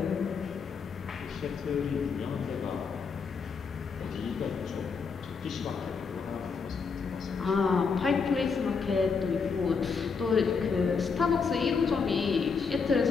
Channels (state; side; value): quieter; right; 5.3 dB